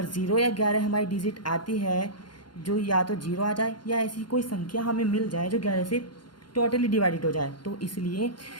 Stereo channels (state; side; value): late; right; 0.71 ms